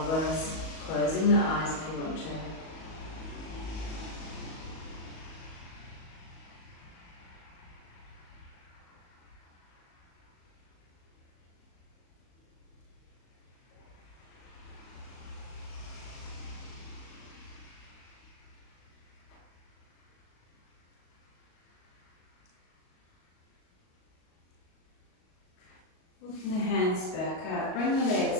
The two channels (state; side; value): late; right; 38 ms